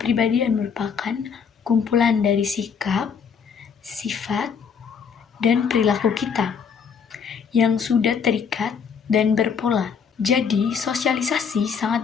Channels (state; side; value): quieter; right; 6.5 dB